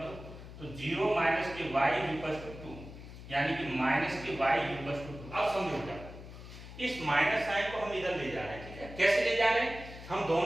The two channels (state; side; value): noise; left; hum, 14 dB below the sound